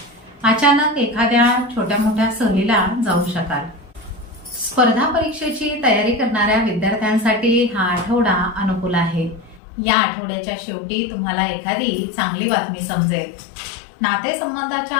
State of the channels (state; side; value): drops out; right; at 9.6 s